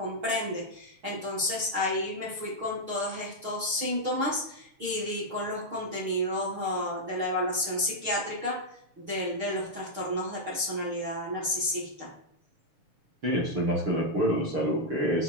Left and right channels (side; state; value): left; late; 6.5 ms